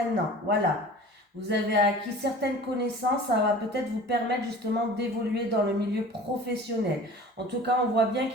Voilà. Vous avez acquis certaines connaissances, ça va peut-être vous permettre justement d'évoluer dans le milieu professionnel. En tout cas, on voit bien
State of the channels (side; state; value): both; normal; correlation 0.42